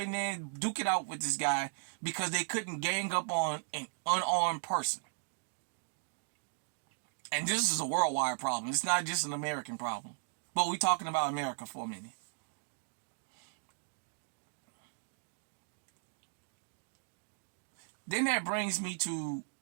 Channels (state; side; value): silent; left; digital silence